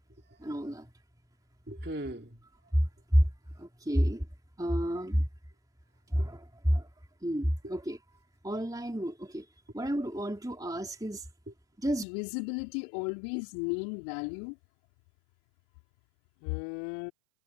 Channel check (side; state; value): right; drops out; at 12.1 s